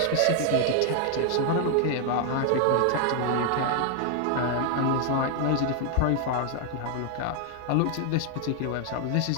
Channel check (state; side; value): different; both; correlation 0.00